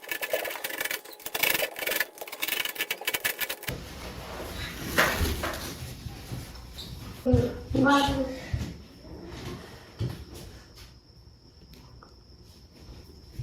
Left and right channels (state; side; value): identical; both; correlation 1.00